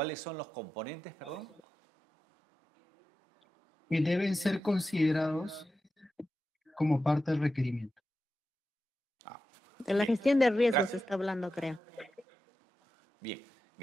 son los componentes, perdón? Que deben ser considerados como parte del requerimiento. De la gestión de riesgos se está hablando, creo. Bien,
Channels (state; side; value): normal; both; correlation 0.90